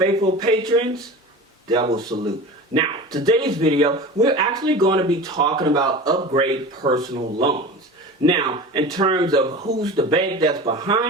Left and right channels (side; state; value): both; normal; correlation 0.34